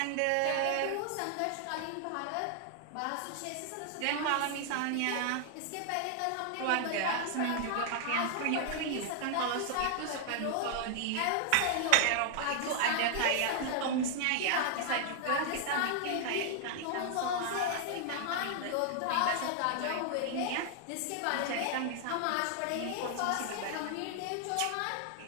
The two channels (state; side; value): different; both; correlation 0.00